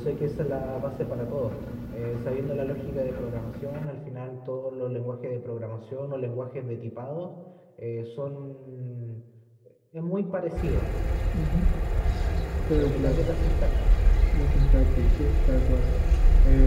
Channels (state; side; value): identical; both; correlation 1.00